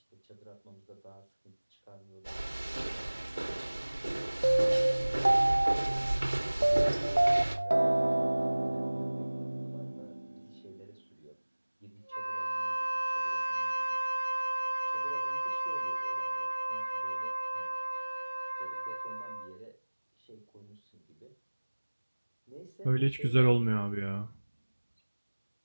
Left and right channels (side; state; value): both; inverted; correlation -1.00